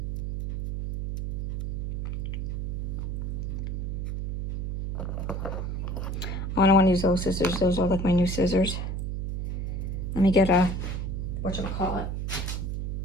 Oh, I don't want to use those scissors. Those are like my new scissors. Let me get a, whatchamacallit.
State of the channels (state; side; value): noise; right; hum, 2 dB below the sound